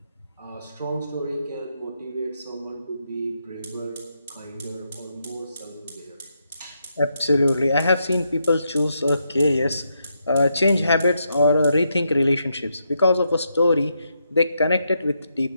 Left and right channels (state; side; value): inverted; both; correlation -0.81